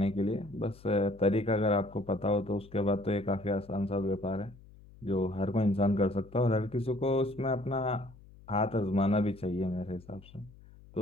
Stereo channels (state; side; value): noise; left; hum, 22 dB below the sound